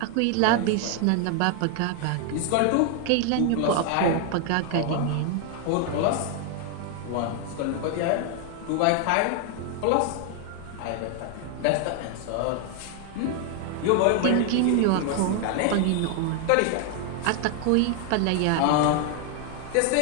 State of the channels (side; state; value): both; different; correlation 0.00